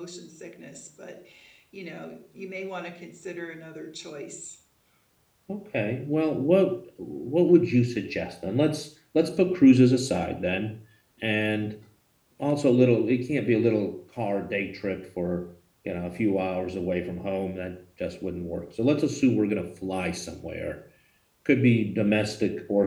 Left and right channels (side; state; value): both; identical; correlation 1.00